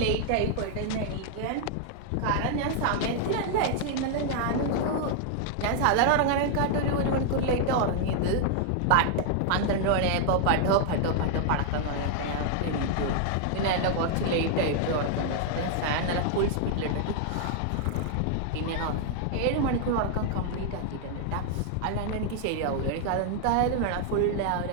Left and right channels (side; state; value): both; different; correlation 0.00